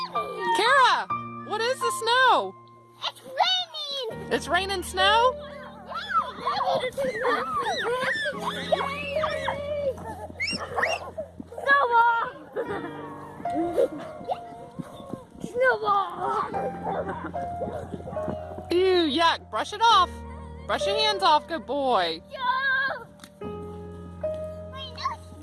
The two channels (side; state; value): both; identical; correlation 1.00